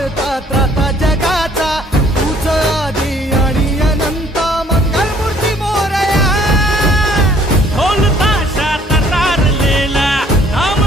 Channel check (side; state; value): both; normal; correlation 0.59